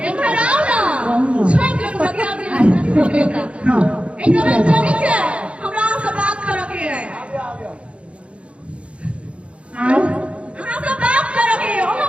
एक बार आओ ना छोड़ के बता दे हां एक बार जानी छे हमरा से बात करे के है हमरा से बात करे के हम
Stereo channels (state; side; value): late; left; 0.060 ms